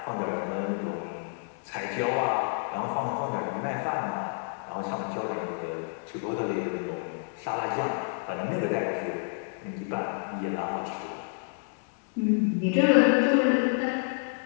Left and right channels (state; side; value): silent; right; 58 dB below the other